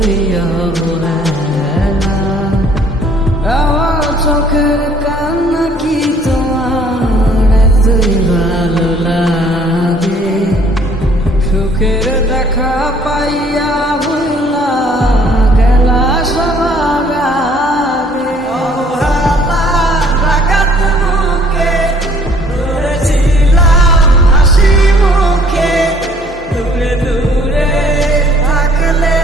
অবহেলা। আমার চোখের কান্না কি তোমার এতই ভালো লাগে? সুখের দেখা পাইয়া ভুলা গেলা সবার আগে। অবহেলা রাগাত মুখে ধরেছিলাম হাসি মুখে, দূরে দূরে থাকলে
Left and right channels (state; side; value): normal; both; correlation 0.59